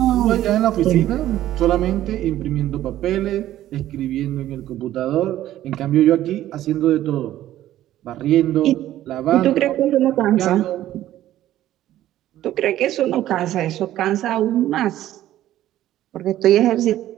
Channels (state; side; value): quieter; left; 13.4 dB